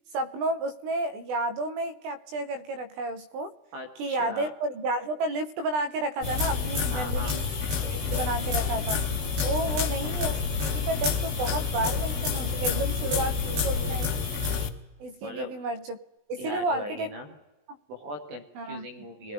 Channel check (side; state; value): left; late; 20 ms